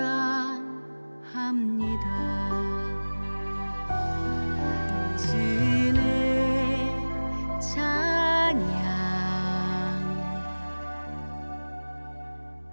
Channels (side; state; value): both; inverted; correlation -1.00